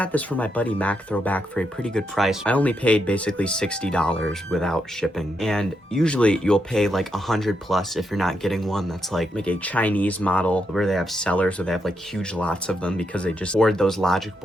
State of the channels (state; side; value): normal; both; correlation 0.81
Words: this from my buddy Mac Throwback for a pretty good price. I only paid basically $60 without shipping. And usually you'll pay like 100 plus if you're not getting one that's like a Chinese model where they have sellers where they have like huge lots of them because they just board those logic